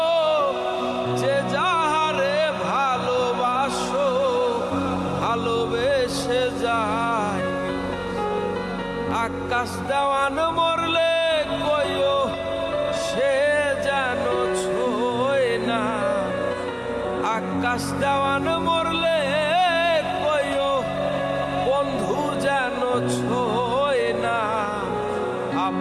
যে যাহারে ভালোবাসো ভালোবেসে যায়। আকাশ দেওয়ান মরলে কইও সে যেন ছোয় না, আকাশ দেওয়ান মরলে কইও বন্ধু যেন ছোয় না।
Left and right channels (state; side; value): identical; both; correlation 1.00